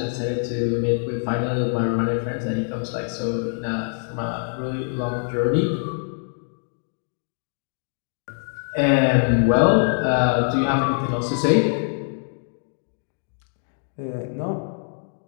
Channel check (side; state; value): right; silent; 63 dB below the other